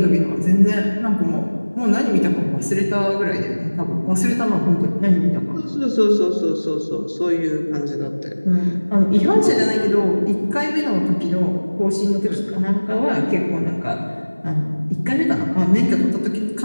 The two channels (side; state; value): both; inverted; correlation -1.00